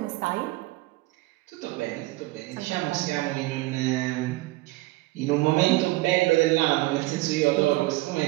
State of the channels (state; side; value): quieter; left; 19.9 dB